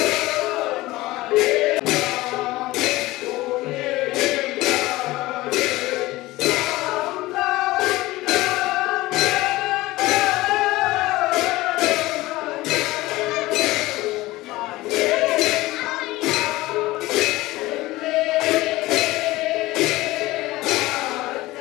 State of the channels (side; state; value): right; quieter; 18.8 dB